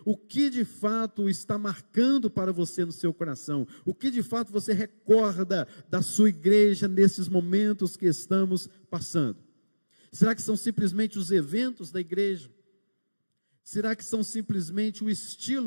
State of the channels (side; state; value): both; inverted; correlation -1.00